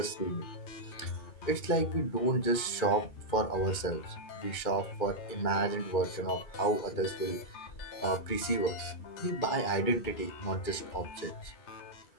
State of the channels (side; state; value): right; late; 2.3 ms